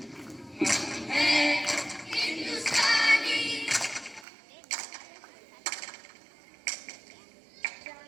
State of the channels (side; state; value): left; drops out; at 4.2 s